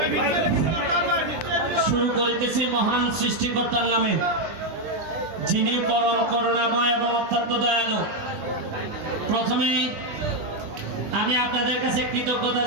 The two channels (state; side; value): late; left; 20 ms